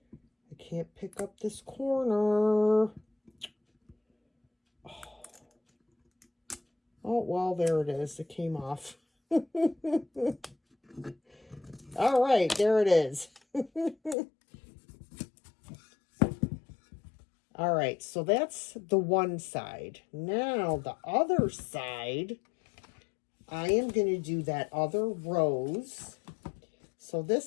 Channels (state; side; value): drops out; right; at 14.2 s